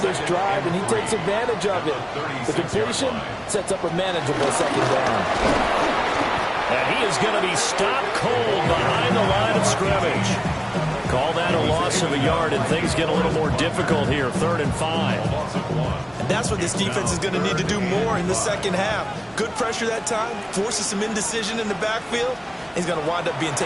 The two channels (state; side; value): identical; both; correlation 1.00